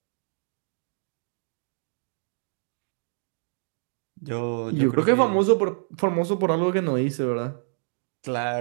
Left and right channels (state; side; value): silent; left; digital silence